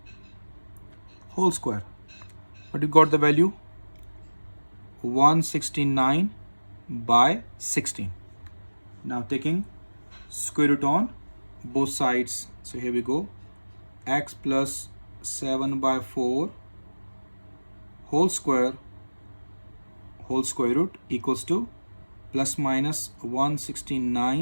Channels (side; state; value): both; inverted; correlation -1.00